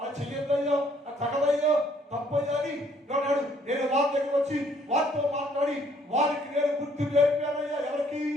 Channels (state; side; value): normal; both; correlation 0.64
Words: చెయ్యొద్దయ్యో, అది తగదయ్యో, తప్పయ్యని అన్నాడు. నేను వారి దగ్గర వచ్చి వారితో మాట్లాడి వారికి నేను గుర్తు నేర్పానయ్యా. ఎవరికి?